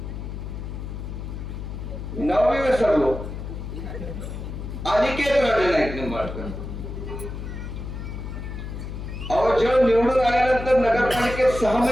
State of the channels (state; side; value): noise; left; hum, 7 dB below the sound